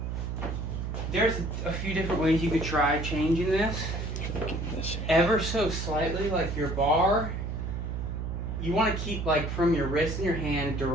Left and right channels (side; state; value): right; noise; hum, 4 dB below the sound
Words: there's a few different ways you could try changing this. Ever so slightly, like your bar, you want to keep like from your wrist and your hand